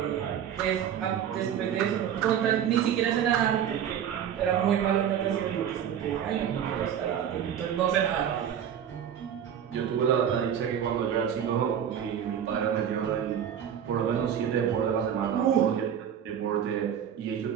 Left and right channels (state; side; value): quieter; left; 9.1 dB